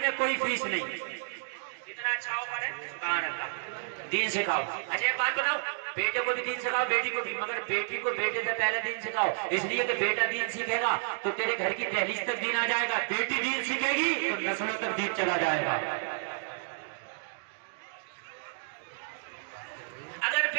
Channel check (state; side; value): silent; left; digital silence